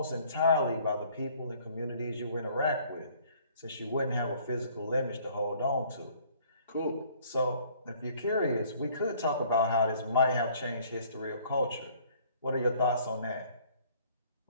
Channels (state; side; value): inverted; both; correlation -0.58